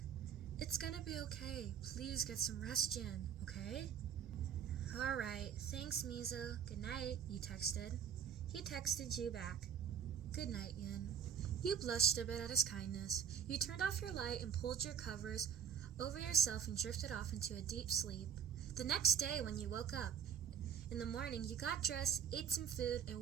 it's gonna be okay. Please get some rest, Jin, okay? Alright, thanks, Miso. Good night, you texted. He texted you back. Good night, Yin. You blushed a bit at his kindness. You turned off your light and pulled your covers over yourself and drifted off into a deep sleep. The next day, when you woke up, in the morning, you got dressed, ate some food, and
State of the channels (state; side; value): quieter; left; 7.9 dB